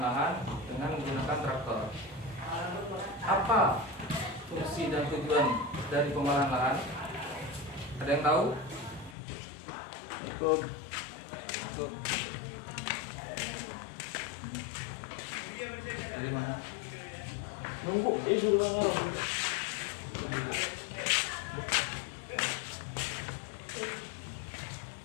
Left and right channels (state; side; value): drops out; right; at 9.2 s